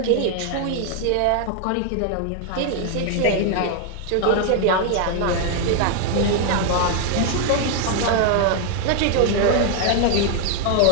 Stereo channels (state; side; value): different; both; correlation 0.01